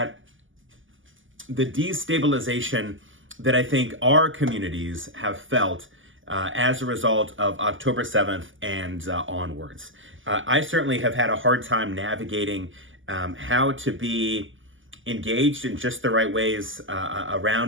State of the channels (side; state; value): left; late; 0.57 ms